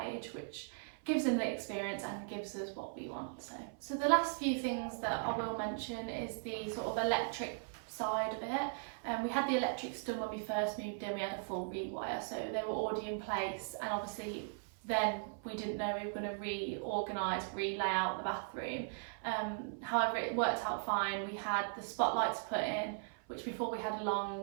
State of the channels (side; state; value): left; silent; 52 dB below the other